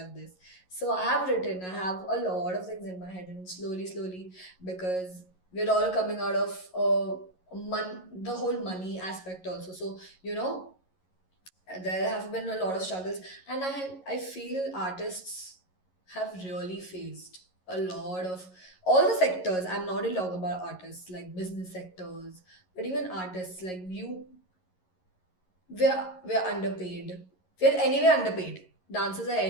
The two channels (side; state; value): right; late; 11 ms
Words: this. So I have a lot of things in my head, and slowly, because we're all coming out of the whole money aspect also. So, there have been a lot of struggles, and I feel artists have really faced a lot of all the sectors. I'm not only talking about artists, like business sectors, but even artists like you. We're underpaid. We're anyway underpaid. Dancers are